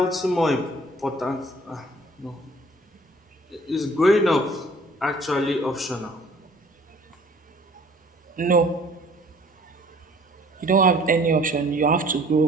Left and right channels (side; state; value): both; normal; correlation 0.54